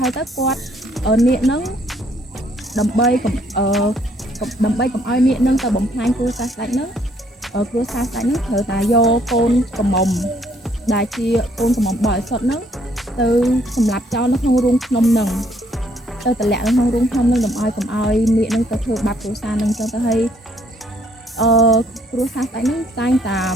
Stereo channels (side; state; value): both; normal; correlation 0.66